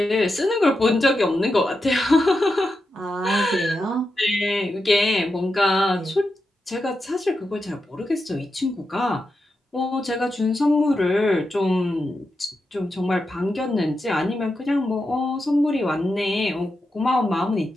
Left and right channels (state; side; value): normal; both; correlation 0.88